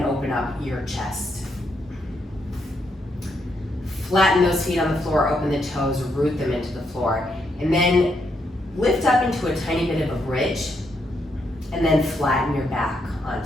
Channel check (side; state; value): both; normal; correlation 0.78